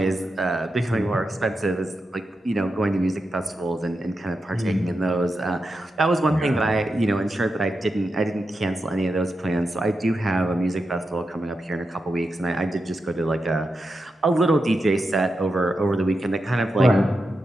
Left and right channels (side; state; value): both; normal; correlation 0.88